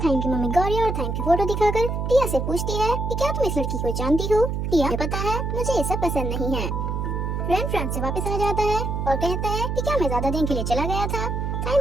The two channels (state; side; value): noise; right; hum, 2 dB below the sound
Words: की mummy Gauri और थाइम की फोटो दिखाकर टिया से पूछती है कि क्या तुम इस लड़की को जानती हो। टिया को पता है मुझे ये सब पसंद नहीं है। रैन फ्रांस से वापस आ जाता है और कहता है कि क्या मैं ज्यादा दिन के लिए चला गया था।